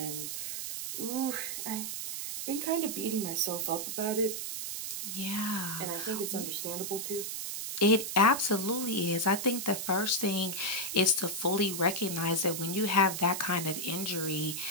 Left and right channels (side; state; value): right; noise; hiss, 4 dB below the sound